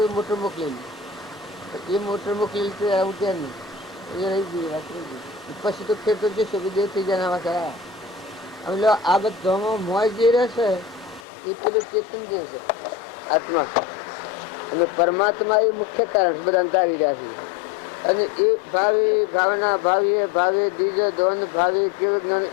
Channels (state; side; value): drops out; right; at 11.2 s